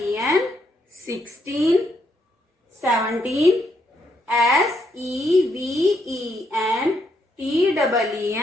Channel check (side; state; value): both; normal; correlation 0.76